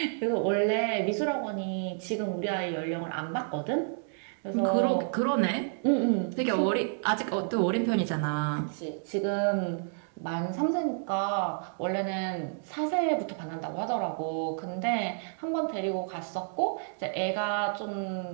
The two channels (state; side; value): silent; left; 58 dB below the other